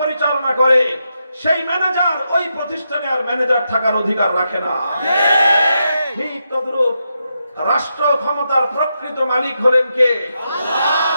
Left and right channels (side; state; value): both; inverted; correlation -0.84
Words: পরিচালনা করে, সেই ম্যানেজার ওই প্রতিষ্ঠানে আর ম্যানেজার থাকার অধিকার রাখে না। ঠিক তদ্রূপ রাষ্ট্র ক্ষমতার প্রকৃত মালিক হলেন কে?